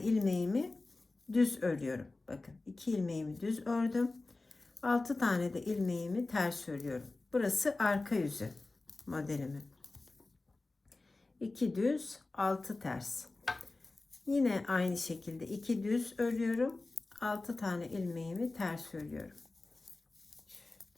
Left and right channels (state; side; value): quieter; right; 3.3 dB